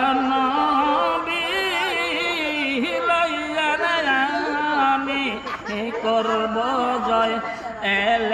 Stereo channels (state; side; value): noise; right; hum, 25 dB below the sound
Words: নবী করব জয়,